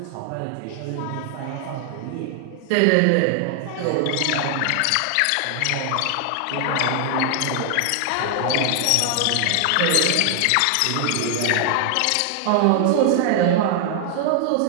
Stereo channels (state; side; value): different; both; correlation 0.00